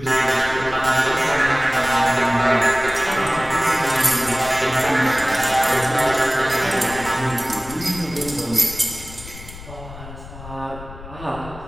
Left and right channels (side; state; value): left; noise; rumble, 15 dB below the sound